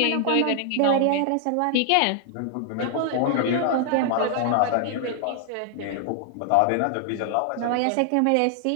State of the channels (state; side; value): different; both; correlation 0.00